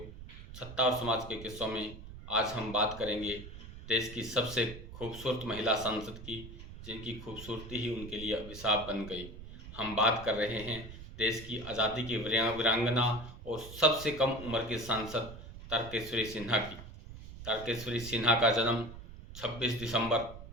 सत्ता और समाज के किस्सों में आज हम बात करेंगे देश की सबसे खूबसूरत महिला सांसद की, जिनकी खूबसूरती ही उनके लिए अभिशाप बन गई। हम बात कर रहे हैं देश की आज़ादी की वीरांगना और सबसे कम उम्र की सांसद तारकेश्वरी सिन्हा की। तारकेश्वरी सिन्हा का जन्म 26 दिसंबर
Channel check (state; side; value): noise; right; rumble, 13 dB below the sound